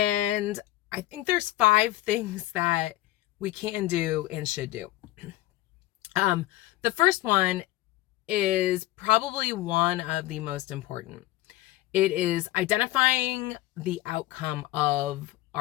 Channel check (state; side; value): quieter; right; 16.7 dB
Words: I think there's 5 things that we can do and should do. The first one is probably one of the most important. It is identifying the outcome of